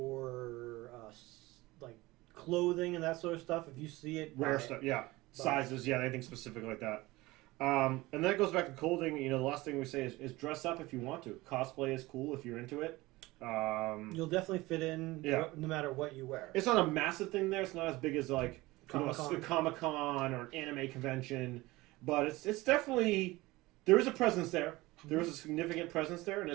like clothing and that sort of stuff. If you see it, Rare stuff, yeah. Sizes, yeah, anything specific like that. And then it goes back to clothing. The last thing we say is dress up if you want to. Cosplay is cool if you're into it. You'll definitely fit in no matter what you wear. It's not a massive thing there. It's not as big as like Comic-Con. a Comic-Con or an anime convention. But it's definitely, there is a presence there. There is a significant presence there, and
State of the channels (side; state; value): left; quieter; 20.2 dB